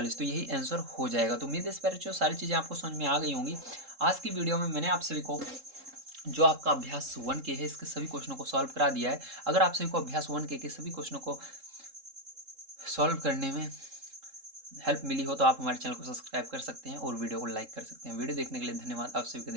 तो यही आंसर हो जाएगा। तो उम्मीद है इस पर जो सारी चीज़ें आपको समझ में आ गई होंगी। आज की वीडियो में मैंने आप सभी को जो आपका अभ्यास 1 के है इसके सभी क्वेश्चनों को सॉल्व करा दिया है। अगर आप सभी को अभ्यास 1 के सभी क्वेश्चनों को सॉल्व करने में हेल्प मिली हो तो आप हमारे चैनल को सब्सक्राइब कर सकते हैं और वीडियो को लाइक कर सकते हैं। वीडियो देखने के लिए धन्यवाद। आप सभी का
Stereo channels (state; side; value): late; left; 3.7 ms